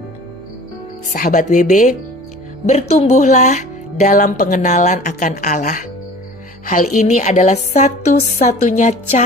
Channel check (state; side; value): noise; right; hum, 28 dB below the sound